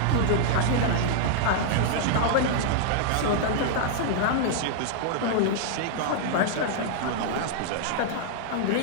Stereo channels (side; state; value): both; different; correlation -0.01